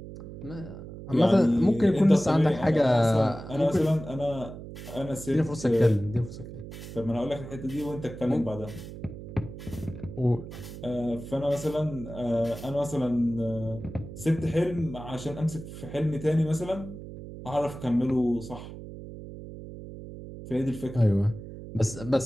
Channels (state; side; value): noise; right; hum, 12 dB below the sound